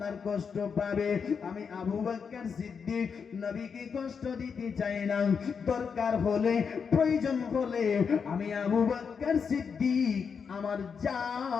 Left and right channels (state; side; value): quieter; right; 6.2 dB